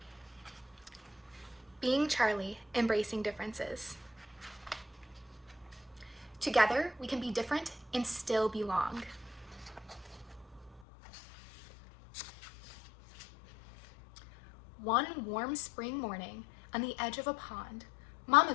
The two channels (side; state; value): right; drops out; at 10.8 s